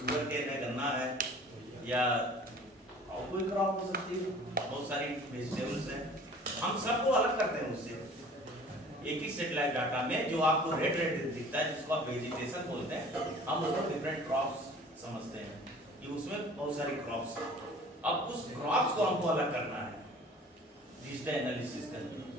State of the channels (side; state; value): both; normal; correlation 0.47